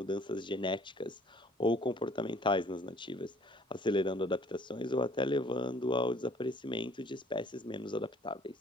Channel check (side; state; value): both; normal; correlation 0.57